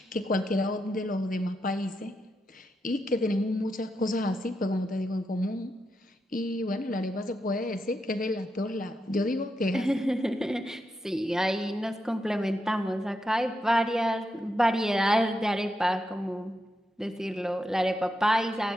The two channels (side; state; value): both; normal; correlation 0.84